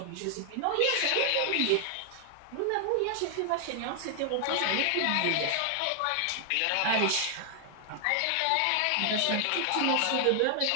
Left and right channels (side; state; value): both; different; correlation 0.00